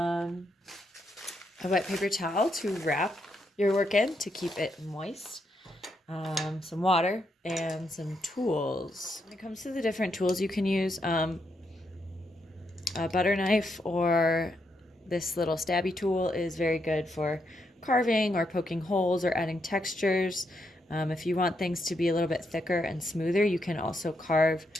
wet paper towel to wrap your work in to keep it moist. Some water and some tools. When it comes to the different tools you can use, a butter knife or this little stabby tool is very good for carving or poking holes or adding textures. If you want things to be a little bit thicker and smoother, you can also carve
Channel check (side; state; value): both; normal; correlation 0.80